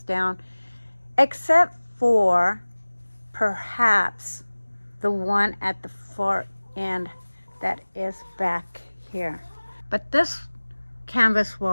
down, except for perhaps the one at the far end that is back here. But this canvas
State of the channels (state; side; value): inverted; both; correlation -1.00